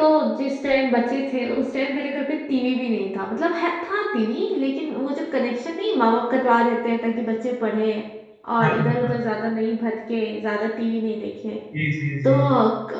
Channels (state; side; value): identical; both; correlation 1.00